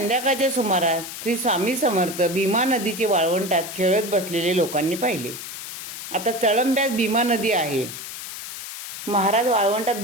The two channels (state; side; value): noise; left; hiss, 9 dB below the sound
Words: सुमारास श्री स्वामी समर्थ भीमा नदीचे वाळवंटात खेळत बसलेले लोकांनी पाहिले. आता चळंब्यात भीमा नदी आहे. महाराज वाळवंटात